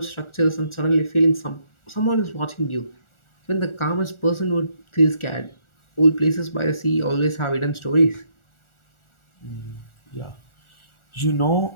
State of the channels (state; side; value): late; right; 1.4 ms